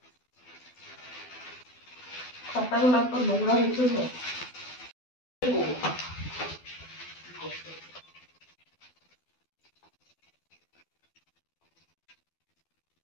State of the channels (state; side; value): late; right; 12 ms